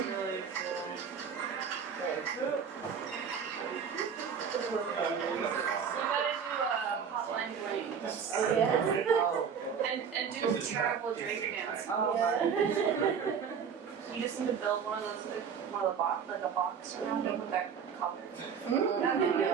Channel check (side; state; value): left; quieter; 6.9 dB